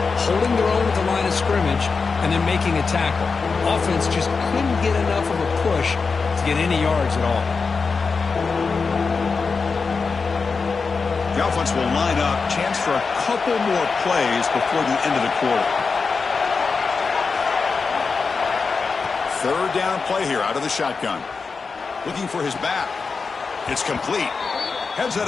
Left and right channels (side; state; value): right; quieter; 4.8 dB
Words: holding their own at the line of scrimmage, and then making a tackle. Offense just couldn't get enough of a push to get any yards at all. The offense will line up. Chance for a couple more plays before the end of the quarter. Third down play here out of the shotgun. Looking for his back. It's complete. Heads out